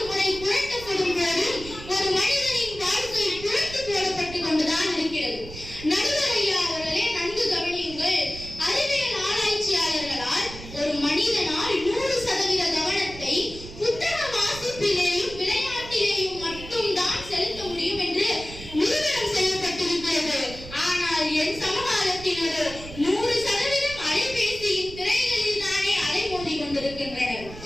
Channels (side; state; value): right; noise; rumble, 14 dB below the sound